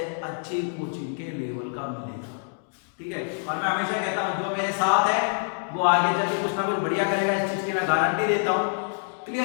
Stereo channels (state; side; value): silent; right; digital silence